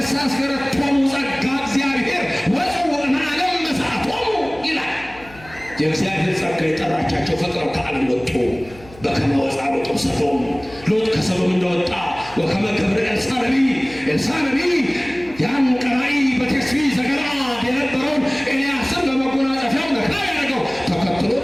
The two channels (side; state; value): left; noise; hum, 21 dB below the sound